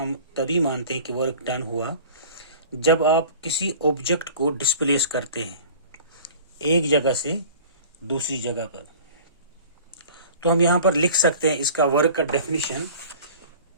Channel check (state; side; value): inverted; both; correlation -0.43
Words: तभी मानते हैं कि वर्क डन हुआ जब आप किसी ऑब्जेक्ट को डिस्प्लेस करते हैं एक जगह से दूसरी जगह पर। तो हम यहाँ पर लिख सकते हैं इसका वर्क का definition: